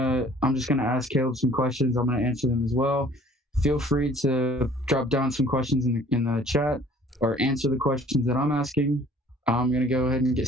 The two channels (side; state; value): both; normal; correlation 0.53